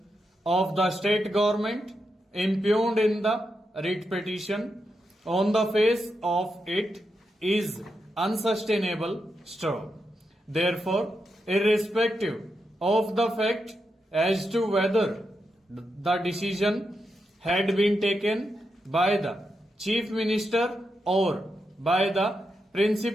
of the state government impugned in the writ petition on the face of it is unsustainable. Therefore, irrespective of the fact as to whether the decision had been taken by the Chief Minister or by the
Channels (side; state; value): both; normal; correlation 0.85